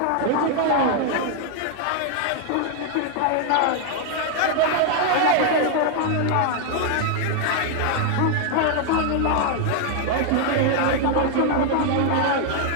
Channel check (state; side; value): different; both; correlation 0.00